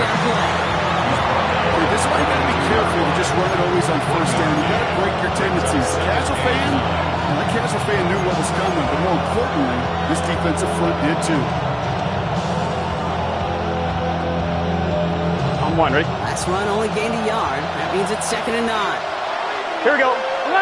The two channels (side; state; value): both; identical; correlation 1.00